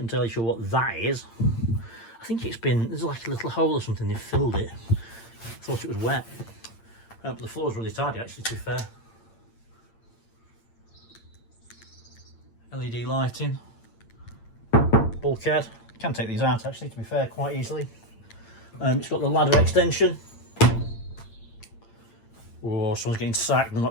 sure what that is. I think it's been, there's like a little hole or something, they've filled it. Thought it was wet. But the floor's really tidy actually, to be fair. LED lighting. Bulkhead. Can take these out actually, to be fair, quite easily. It's got the ladder extension. Oh, someone's getting sacked, they're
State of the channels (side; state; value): right; late; 8.8 ms